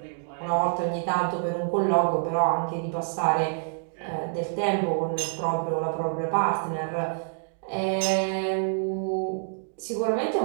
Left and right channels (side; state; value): left; silent; digital silence